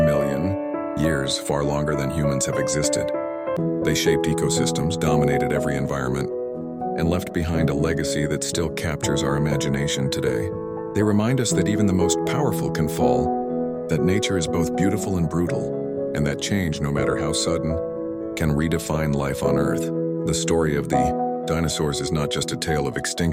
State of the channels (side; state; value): both; identical; correlation 1.00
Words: years, far longer than humans have existed. They shaped ecosystems, dominated every environment, and left behind a legacy that still captures our imagination today. They remind us that even the most powerful can fall, that nature is both beautiful and brutal, and that change, no matter how sudden, can redefine life on Earth. The story of the dinosaurs is not just a tale of